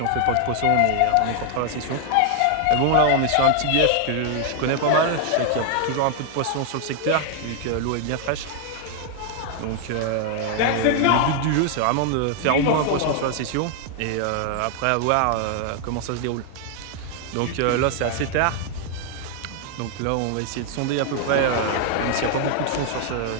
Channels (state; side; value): different; both; correlation 0.00